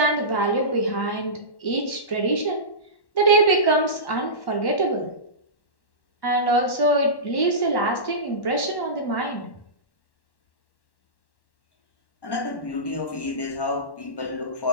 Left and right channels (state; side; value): late; right; 1.1 ms